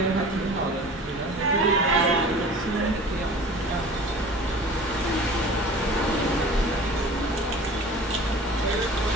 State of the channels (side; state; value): both; normal; correlation 0.42